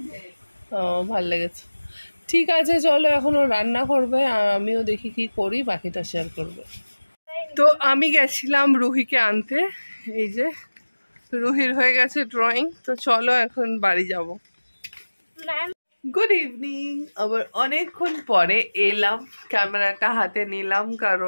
ও ভালো লেগেছে, ঠিক আছে চলো এখন ও রান্না করবে আর আমিও দেখি কি করি, বাকিটা শেয়ার করবো। তো আমি গেছিলাম রুহিকে আনতে। এই যে রুহির হয়ে গেছে ড্রয়িং, তো চলো এখন বাড়ি যাব। গুড ইভিনিং, আবার অনেকক্ষণ পরে এলাম, ক্যামেরাটা হাতে নিলাম,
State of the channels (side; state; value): both; inverted; correlation -1.00